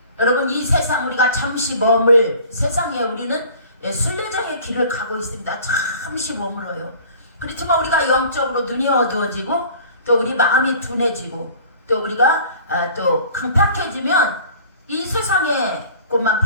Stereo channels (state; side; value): inverted; both; correlation -0.47